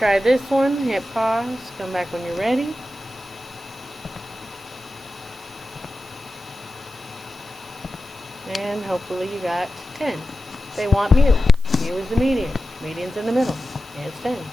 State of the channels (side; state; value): right; noise; hiss, 24 dB below the sound